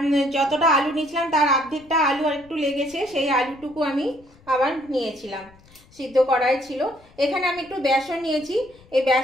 যতটা আলু নিয়েছিলাম তার অর্ধেকটা আলু আর একটু লেগেছে, সেই আলুটুকু আমি আবার নিয়েছিলাম, সিদ্ধ করাই ছিল। এখানে আমি একটু বেসন নিয়েছি, এই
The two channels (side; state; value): left; noise; rumble, 27 dB below the sound